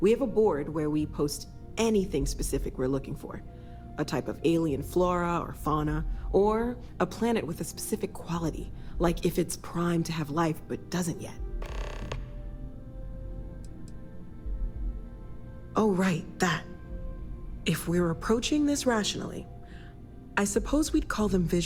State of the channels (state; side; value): identical; both; correlation 1.00